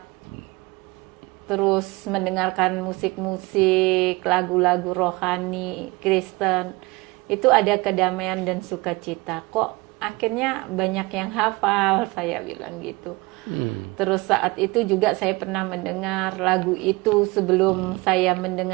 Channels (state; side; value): quieter; left; 23.6 dB